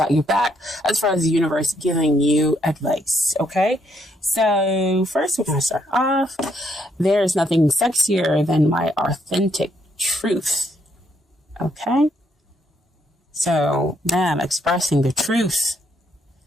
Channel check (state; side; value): normal; both; correlation 0.73